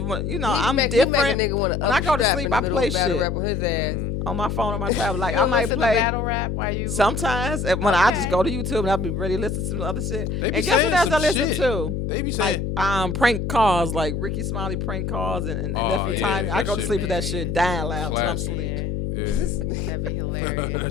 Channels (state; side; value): noise; left; hum, 2 dB below the sound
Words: You know, He I'm make different. a nigga want to When I go to upstrap sleep, in the I middle play of battle shit. rap on his ass. On my phone, on my tablet. Like You I might listen play. to battle rap while you. Sometimes when I just Okay. go to YouTube and I'll be ready to listen to some other shit. They be And guess saying what else some I listen shit. to? They be saying. Like prank calls, like Ricky Smiley prank calls and Oh, Nephew yeah, Tiny. I that go to shit sleep be with that shit dying loud till I'm classic. asleep. Yeah, Yeah. that'd be hilarious.